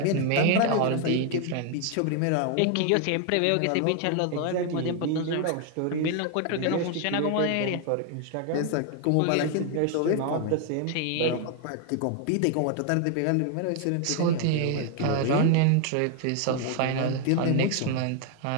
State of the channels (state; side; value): different; both; correlation 0.00